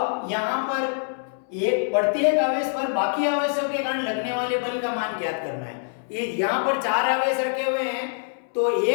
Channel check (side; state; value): right; silent; 62 dB below the other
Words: यहाँ पर एक प्रत्येक आवेश पर बाकी आवेशों के कारण लगने वाले बल का मान ज्ञात करना है। यहाँ पर 4 आवेश रखे हुए हैं तो